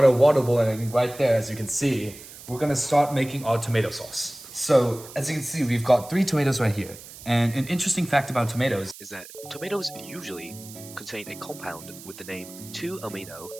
our water boiling right there, as you can see, we're going to start making our tomato sauce. So as you can see, we've got 3 tomatoes right here. And an interesting fact about tomatoes is that tomatoes usually contain a compound with the name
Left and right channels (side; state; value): right; noise; hiss, 16 dB below the sound